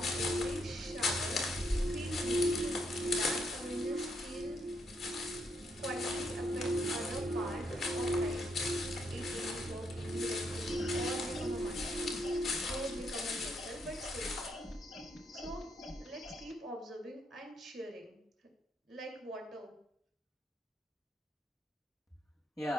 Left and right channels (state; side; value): normal; both; correlation 0.76